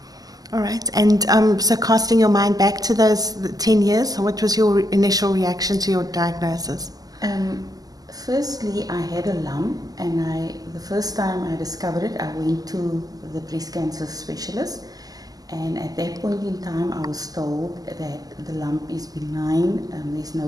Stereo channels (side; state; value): left; late; 0.18 ms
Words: All right. And so casting your mind back to those 10 years, what was your initial reaction to your diagnosis? Firstly, I had a lump, and the first time I discovered it, I went to the breast cancer specialist, and at that point in time, I was told that the lump is benign, there's no